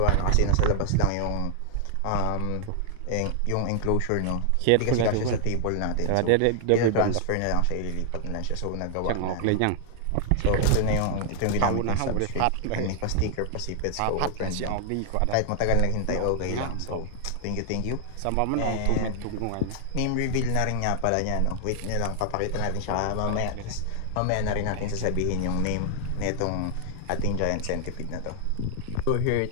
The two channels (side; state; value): both; different; correlation 0.00